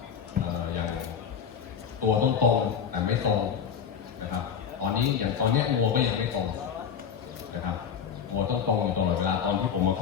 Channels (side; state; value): right; quieter; 7.5 dB